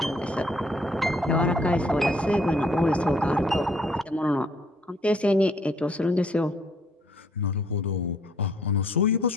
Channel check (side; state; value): both; normal; correlation 0.64